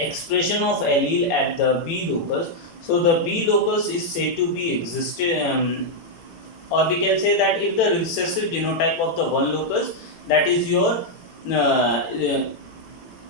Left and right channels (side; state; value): right; late; 18 ms